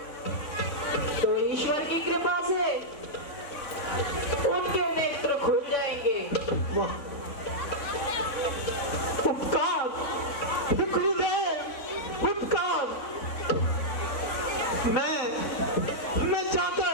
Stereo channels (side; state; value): right; late; 3.9 ms